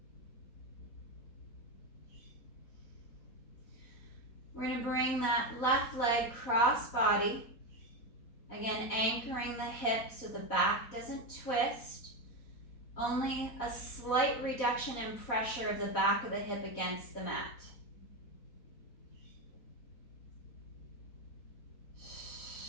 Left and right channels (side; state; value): right; late; 4.1 ms